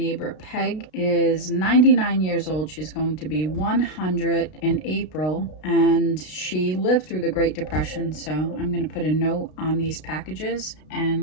Peg is 99 years old. She's going to be 100 in April, and she lived through the Great Depression. So I'm going to put a note on these packages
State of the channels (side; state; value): right; late; 32 ms